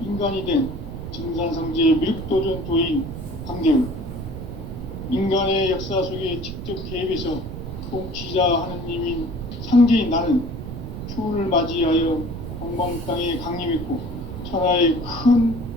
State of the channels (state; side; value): noise; right; rumble, 8 dB below the sound